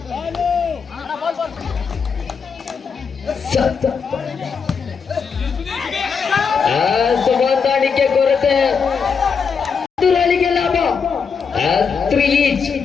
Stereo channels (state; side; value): quieter; right; 5.9 dB